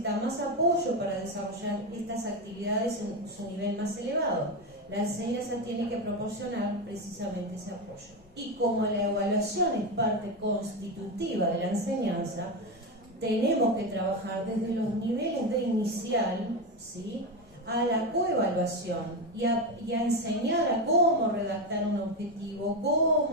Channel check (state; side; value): normal; both; correlation 0.13